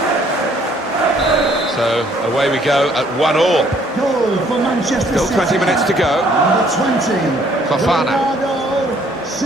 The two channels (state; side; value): normal; both; correlation 0.63